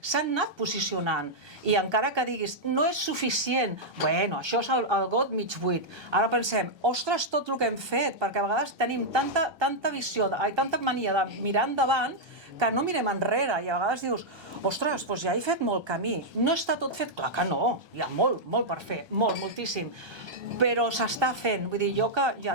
s'han anat posicionant. I encara que diguis, no és suficient, això és el got mig buit. Ara pensem, ostres, tot el que hem fet, perquè a vegades tenim tanta visió, tanta mania de mirar endavant, que no mirem enrere, i a vegades dius, ostres, doncs ja he fet molt camí. No està tot fet? Clar que no, hi ha molt per fer, moltíssim. Però s'està fent. Vull dir, jo que ja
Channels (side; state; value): left; late; 1.3 ms